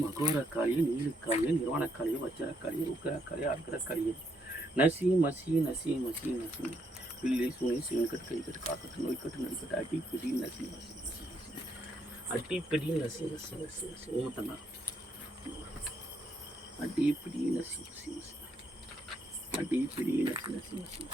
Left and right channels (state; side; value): normal; both; correlation 0.74